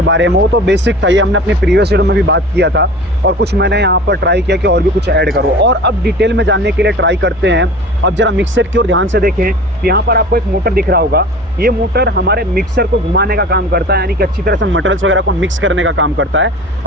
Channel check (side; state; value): right; noise; hum, 23 dB below the sound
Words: बारे में, वो तो बेसिक था, ये हमने अपने प्रीवियस वीडियो में भी बात किया था और कुछ मैंने यहाँ पर ट्राई किया कि और भी कुछ ऐड करो। और अब डिटेल में जानने के लिए ट्राई करते हैं। अब जरा मिक्सर की ओर ध्यान से देखें, तो यहाँ पर आपको एक मोटर दिख रहा होगा। ये मोटर हमारे मिक्सर को घुमाने का काम करता है, यानी कि अच्छी तरह से मटेरियल्स वगैरह को मिक्स करने का काम करता है।